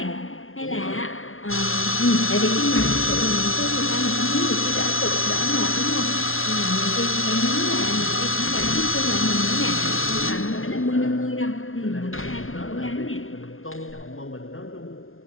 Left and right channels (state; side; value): late; right; 0.61 ms